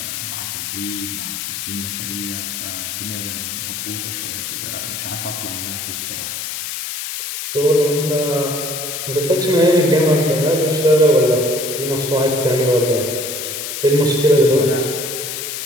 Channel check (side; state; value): left; noise; hiss, 5 dB below the sound